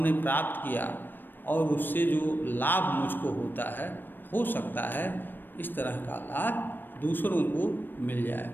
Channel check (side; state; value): right; late; 0.094 ms